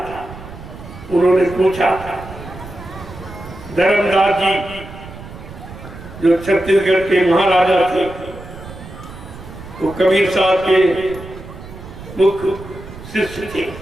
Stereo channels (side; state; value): right; noise; rumble, 14 dB below the sound